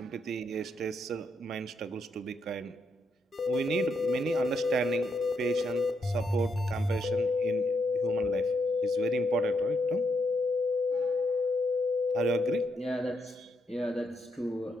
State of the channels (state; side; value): normal; both; correlation 0.79